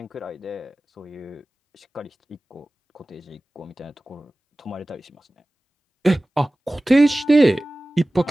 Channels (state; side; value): normal; both; correlation 0.97